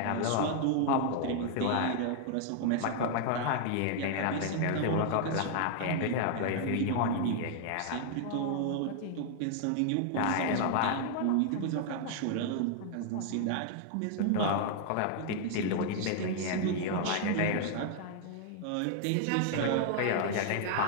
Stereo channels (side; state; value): both; different; correlation 0.00